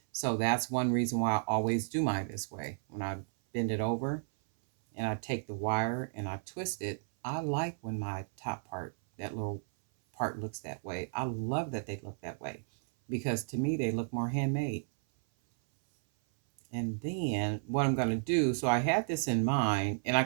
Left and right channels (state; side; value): silent; left; 56 dB below the other